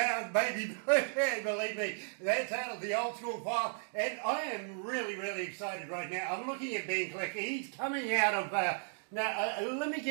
baby. Believe me, that's out of the old school file, and I am really, really excited right now. I'm looking at Ben Klick. He's coming out of, now, let me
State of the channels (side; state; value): left; silent; 55 dB below the other